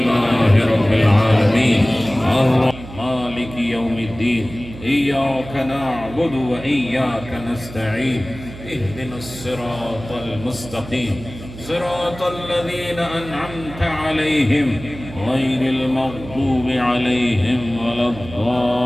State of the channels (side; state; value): right; noise; hum, 14 dB below the sound